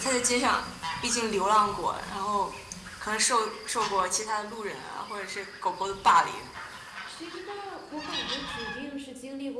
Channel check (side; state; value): both; identical; correlation 1.00